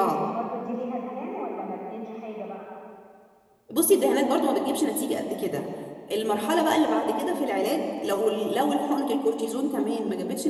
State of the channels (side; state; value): both; identical; correlation 1.00